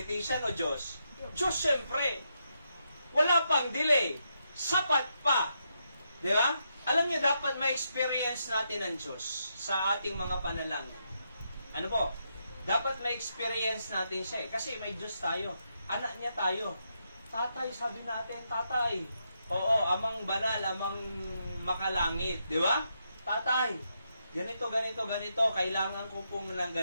o Diyos? Diyos, syempre. Wala pang delay. Sapat pa. Di ba? Alam niyo, dapat ma-experience natin ang Diyos sa ating mga panalangin. Ano po? Dapat ma-experience natin siya eh. Kasi may Diyos tayo. Anak niya tayo. Tatay, sabi natin, tatay. Oo, amang banal, amang makalangit. Di ba? Tatay, ganito, ganito, ganito. Kailangan ko pong ng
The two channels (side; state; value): both; inverted; correlation -0.81